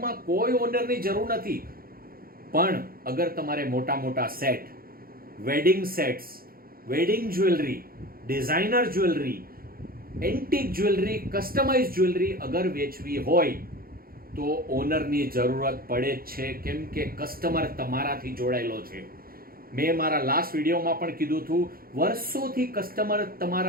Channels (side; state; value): left; late; 0.43 ms